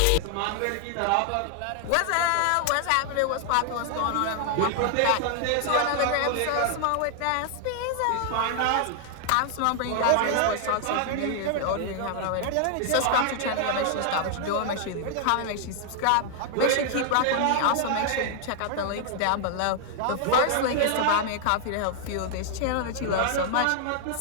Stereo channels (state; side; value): different; both; correlation 0.00